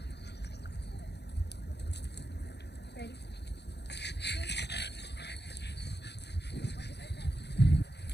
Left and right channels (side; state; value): right; late; 0.49 ms